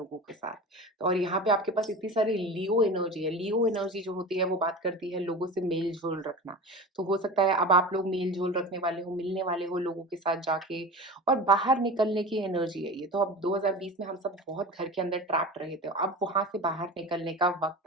के साथ। तो और यहाँ पे आपके पास इतनी सारी लियो एनर्जी है। लियो एनर्जी जो होती है वो बात करती है लोगों से मेल-जोल रखना। तो हो सकता है अब आप लोग मेल-जोल रखने वाले हो, मिलने वाले हो लोगों के साथ जाके, और बाहर निकलने की एनर्जी है ये। तो अब 2020 में हम सब बहुत घर के अंदर ट्रैप्ड रहे थे। अब वहाँ से बाहर निकलने का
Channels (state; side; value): normal; both; correlation 0.32